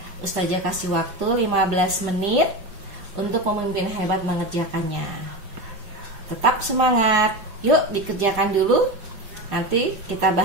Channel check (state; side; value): late; left; 5.2 ms